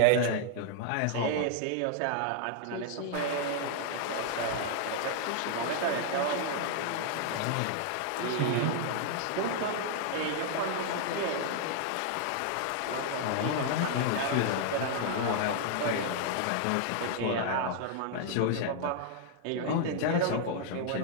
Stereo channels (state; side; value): different; both; correlation 0.00